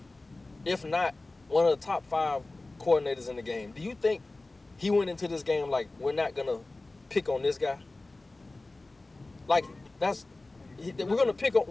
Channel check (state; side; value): quieter; right; 3.1 dB